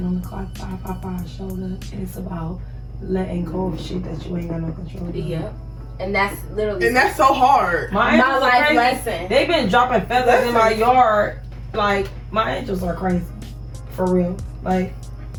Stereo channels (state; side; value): identical; both; correlation 1.00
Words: on the clock 555 showed up, and it's about letting go of shit that you ain't got no control over. Yep. And that's literally And that's so hard. My my angels are life crazy. lesson. They've been dropping feathers in my yard. Like, my angels are crazy. For real. Like,